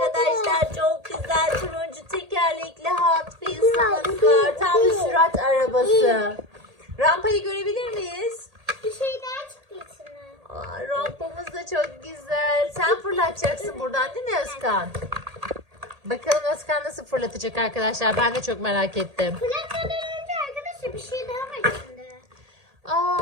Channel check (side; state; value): left; late; 1.8 ms